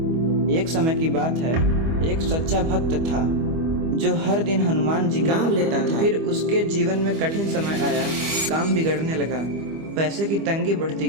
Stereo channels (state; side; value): late; left; 25 ms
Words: एक समय की बात है, एक सच्चा भक्त था जो हर दिन हनुमान जी का नाम लेता था। फिर उसके जीवन में कठिन समय आया, काम बिगड़ने लगा, पैसे की तंगी बढ़ती